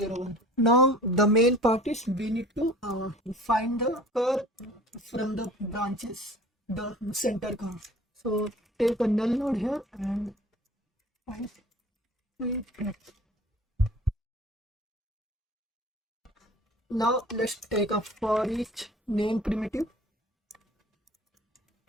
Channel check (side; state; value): both; normal; correlation 0.45